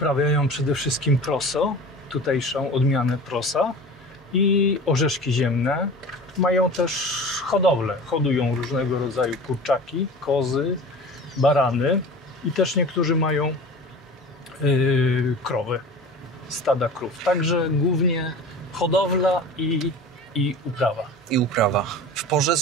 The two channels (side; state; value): both; normal; correlation 0.37